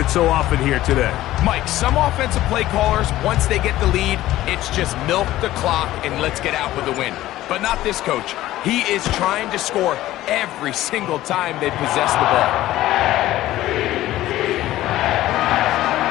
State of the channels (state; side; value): quieter; right; 15.2 dB